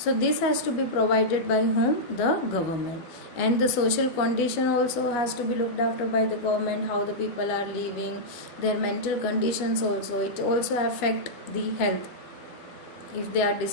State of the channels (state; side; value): late; right; 12 ms